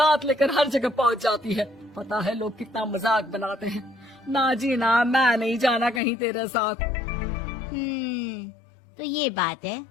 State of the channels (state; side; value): drops out; right; at 6.0 s